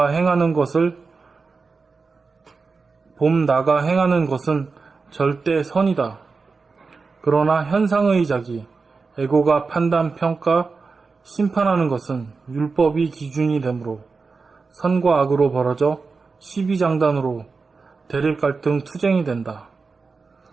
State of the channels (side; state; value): left; quieter; 4.5 dB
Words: 행하는 것은 절대 선이다. 그러나 현상의 자기, 에고가 판단, 평가, 심판하는 것은 율법이 기준이 되므로 선과 악으로 벌어져 시비장단으로 대립갈등 투쟁이 된다.